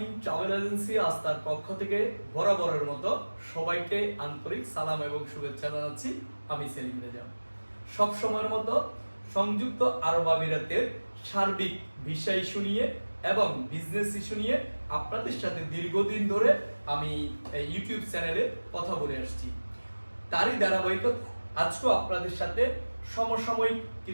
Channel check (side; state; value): both; inverted; correlation -1.00